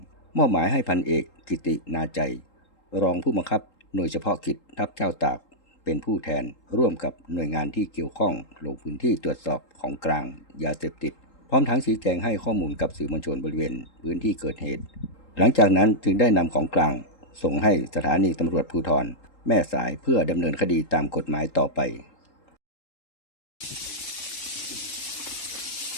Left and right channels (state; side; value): late; right; 3.8 ms